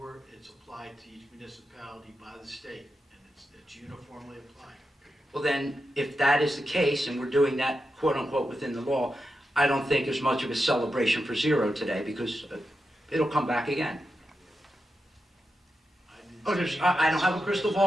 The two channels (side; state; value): both; normal; correlation 0.88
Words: It's applied to each municipality by the state, and it's uniformly applied. Well then, if that is the case, and we're doing that quote-unquote within the law, I don't think there's much of a celebration for zero today, because it'll come back again. Oh, I don't have a crystal